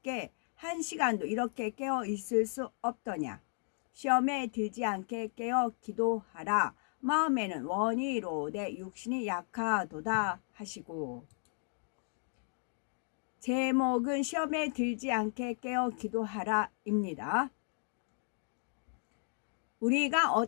1시간도 이렇게 깨어 있을 수 없더냐. 시험에 들지 않게 깨어 기도하라. 마음에는 원이 이로되 육신이 약하도다 하시고. 제목은 시험에 들지 않게 깨어 기도하라 입니다. 우리가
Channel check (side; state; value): right; silent; 55 dB below the other